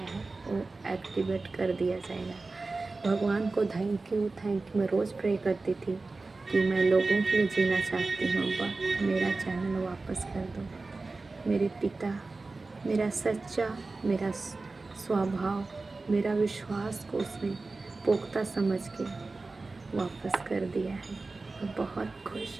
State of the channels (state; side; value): quieter; left; 3.6 dB